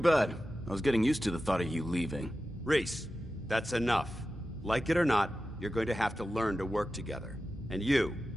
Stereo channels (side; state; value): both; normal; correlation 0.93